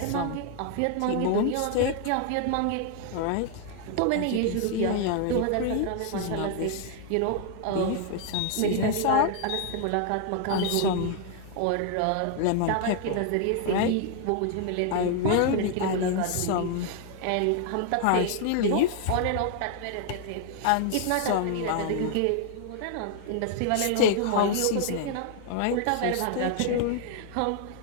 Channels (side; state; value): both; different; correlation 0.00